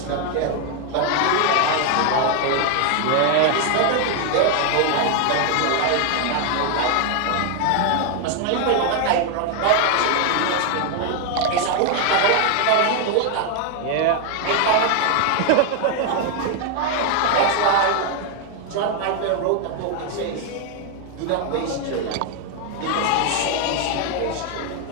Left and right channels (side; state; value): both; different; correlation 0.01